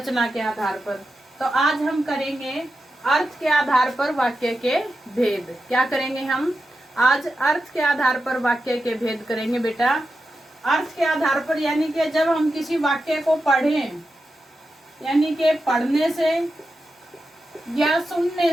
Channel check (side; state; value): both; normal; correlation 0.90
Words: के आधार पर। तो आज हम करेंगे अर्थ के आधार पर वाक्य के भेद। क्या करेंगे हम? आज अर्थ के आधार पर वाक्य के भेद करेंगे बेटा। अर्थ के आधार पर यानी कि जब हम किसी वाक्य को पढ़ें, यानी कि पढ़ने से या